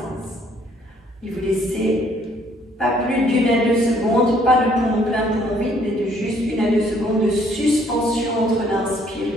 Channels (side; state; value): both; normal; correlation 0.64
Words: Et vous laissez pas plus d'1 à 2 secondes, pas de poumon plein, poumon vide, mais de juste 1 à 2 secondes de suspension entre l'inspire